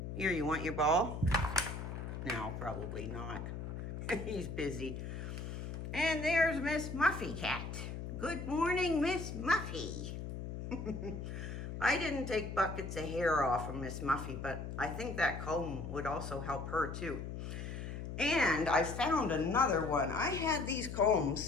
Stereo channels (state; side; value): noise; left; hum, 6 dB below the sound